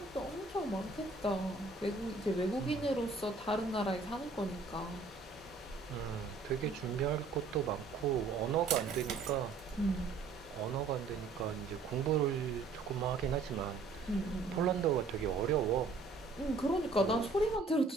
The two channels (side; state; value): left; quieter; 4.1 dB